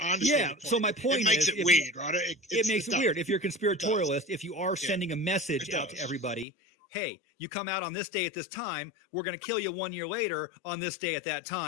I understand. Yeah. Your point. So my point it makes it weird, right? It makes it weird. If you're a conspiratorialist, if you are sending a message out to everybody, hey, you come out on this day at this time, we're going to kill you 1 year later on this day at that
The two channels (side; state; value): right; drops out; at 6.5 s